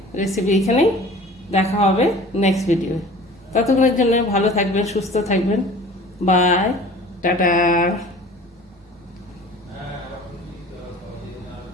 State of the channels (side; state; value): both; normal; correlation 0.44